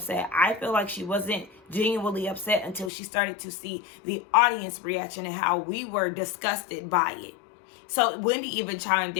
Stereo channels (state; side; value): drops out; right; at 2.9 s